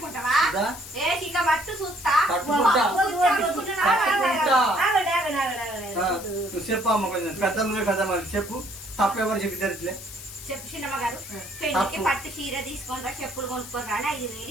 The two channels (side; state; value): left; noise; hiss, 13 dB below the sound